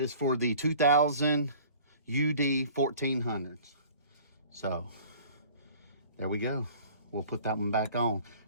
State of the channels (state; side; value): inverted; both; correlation -0.47